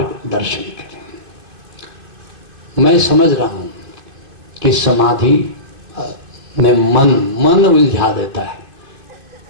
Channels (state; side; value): late; left; 2.6 ms